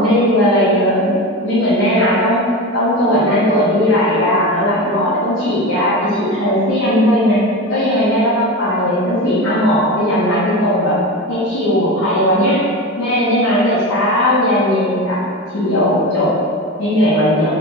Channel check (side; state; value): both; normal; correlation 0.25